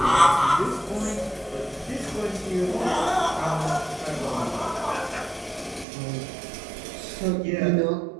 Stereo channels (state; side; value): drops out; left; at 5.9 s